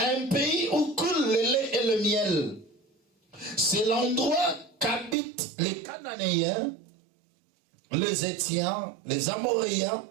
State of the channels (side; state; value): left; drops out; at 5.2 s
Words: pays où coule le lait et le miel. C'est l'endroit qu'habitent les Cananéens, les Étiens, les Amoréens,